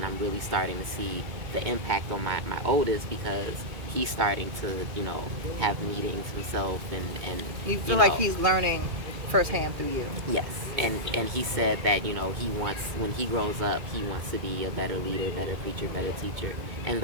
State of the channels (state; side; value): late; left; 2.2 ms